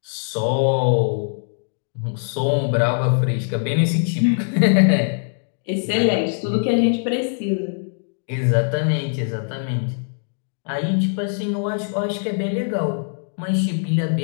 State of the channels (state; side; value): silent; right; digital silence